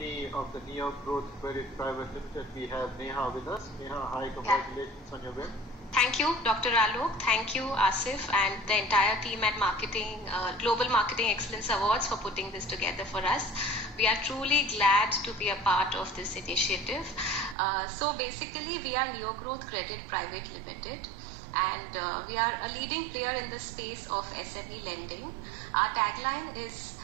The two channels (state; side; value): drops out; left; at 17.6 s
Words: of the Neo Growth Credit Private Limited. We have Neha with us. Neha, hi, congratulations on your win. Thank you, Dr. Alok. Thank you, Asif, and the entire team at Global Marketing Excellence Awards for putting this together for us. We are truly glad to be a part of this initiative. So basically, we are Neo Growth Credit Private Limited, and we are a leading player in the space of SME lending. Our tagline is